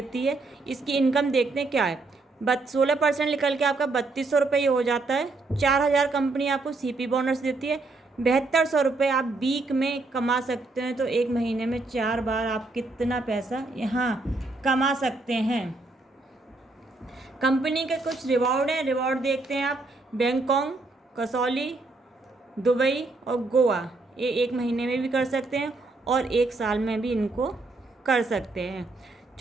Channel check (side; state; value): left; quieter; 3.4 dB